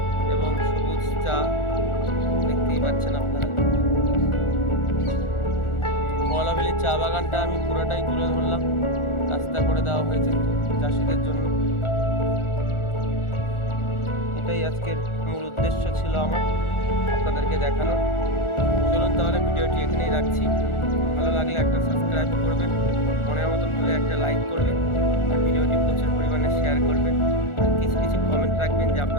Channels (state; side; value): late; right; 1.4 ms